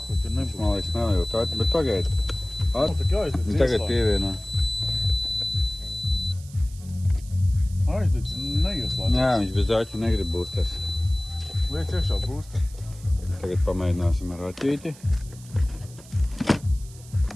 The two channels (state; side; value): noise; right; hiss, 21 dB below the sound